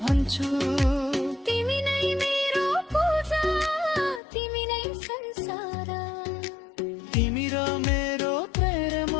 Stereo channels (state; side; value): drops out; right; at 4.2 s